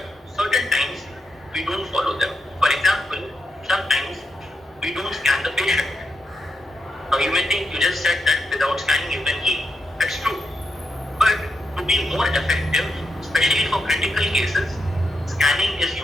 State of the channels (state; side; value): normal; both; correlation 0.84